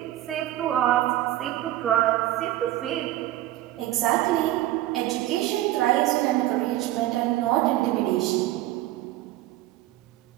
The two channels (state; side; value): quieter; left; 14.9 dB